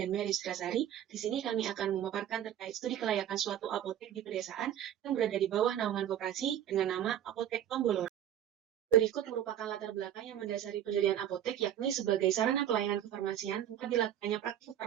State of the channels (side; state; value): left; quieter; 10.6 dB